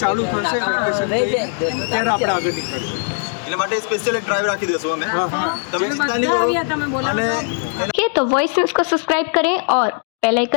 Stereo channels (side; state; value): right; silent; 58 dB below the other